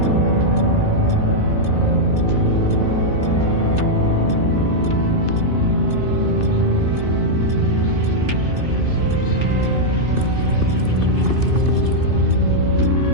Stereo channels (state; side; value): late; left; 2.6 ms